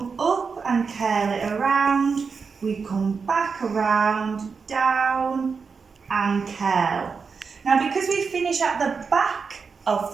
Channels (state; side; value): quieter; left; 5.3 dB